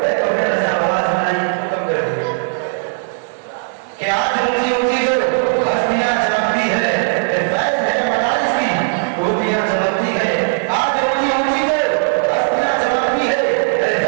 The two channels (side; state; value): left; silent; 68 dB below the other